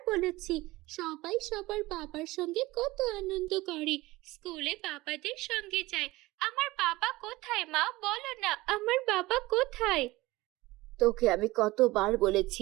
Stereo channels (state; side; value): quieter; left; 19.7 dB